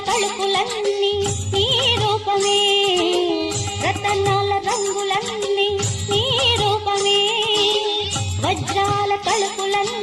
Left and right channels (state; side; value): identical; both; correlation 1.00